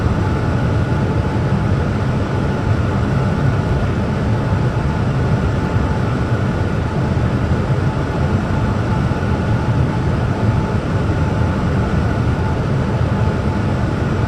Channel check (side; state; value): both; identical; correlation 1.00